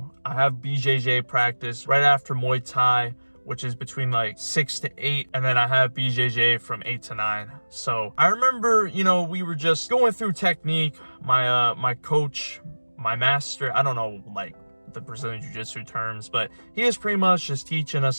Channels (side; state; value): both; inverted; correlation -1.00